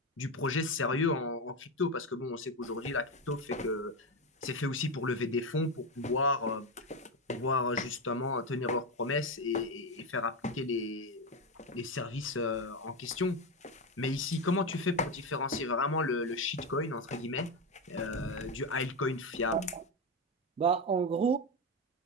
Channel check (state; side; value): normal; both; correlation 0.12